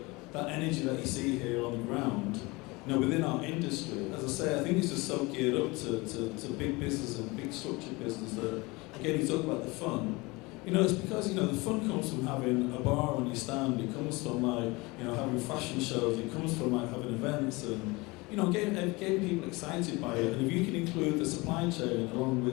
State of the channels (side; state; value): right; quieter; 24.2 dB